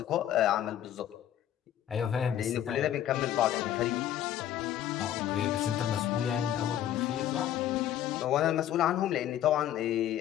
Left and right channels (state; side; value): quieter; right; 11.4 dB